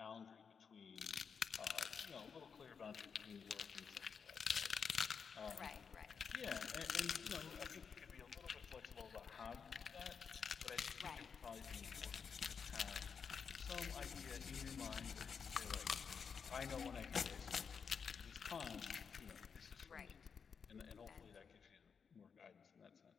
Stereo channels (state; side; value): quieter; right; 6.2 dB